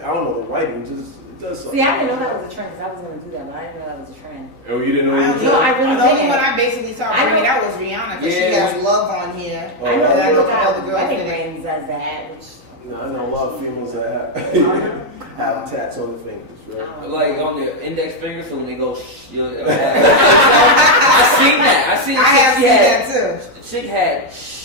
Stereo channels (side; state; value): left; late; 3.9 ms